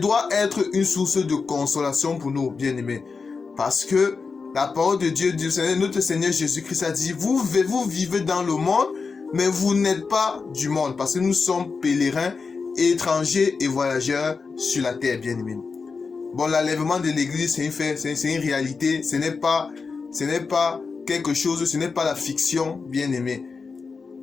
être une source de consolation pour nous, bien-aimés. Parce que la parole de Dieu, notre Seigneur Jésus-Christ a dit, vous vivez dans le monde, mais vous n'êtes pas du monde. Parce que nous sommes pèlerins, étrangers et voyageurs sur la terre, bien-aimés. Bon, l'enlèvement de l'Église, c'est un fait, c'est une réalité. Ce n'est pas quelque chose, ce n'est pas la fiction, bien-aimés.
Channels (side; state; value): right; quieter; 4.8 dB